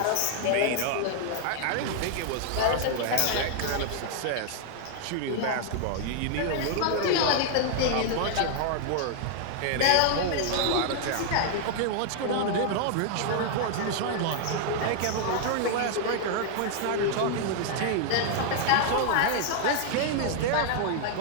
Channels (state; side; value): different; both; correlation 0.00